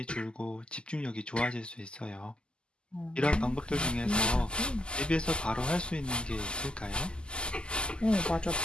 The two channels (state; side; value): late; right; 0.049 ms